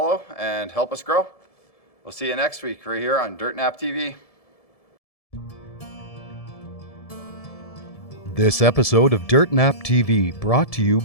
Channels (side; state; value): right; late; 1.7 ms